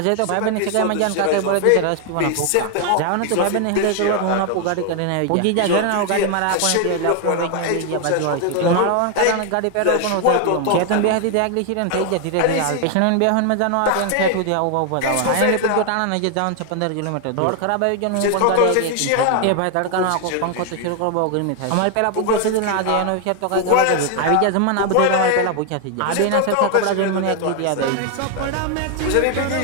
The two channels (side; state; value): both; different; correlation 0.00